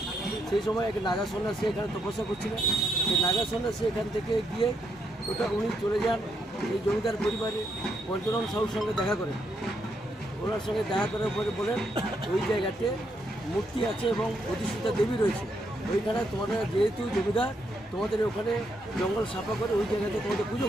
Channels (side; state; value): both; normal; correlation 0.77